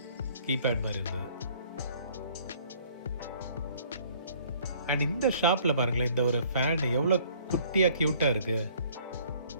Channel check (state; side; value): inverted; both; correlation -0.57